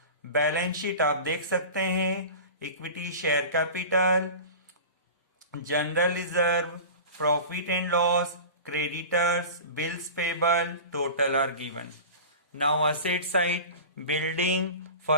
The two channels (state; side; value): inverted; both; correlation -0.34